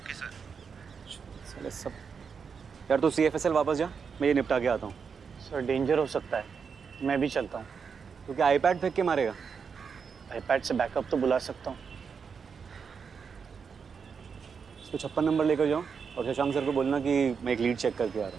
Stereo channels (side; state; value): left; quieter; 6.0 dB